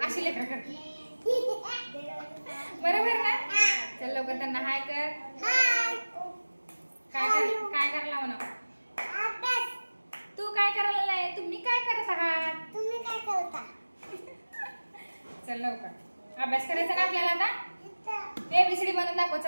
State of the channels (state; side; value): inverted; both; correlation -1.00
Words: अशी लेकरं करतात. बरोबर ना? चल लवकर त्यांना हाय कर. काय करायला म्हणा? तू काय करायला नाही? तुम्ही काय करत आहात? तुम्ही काय करता? चल लवकर अभ्यास करायचा ना आपल्याला. आता एबीसीडी म्हणून दाखव.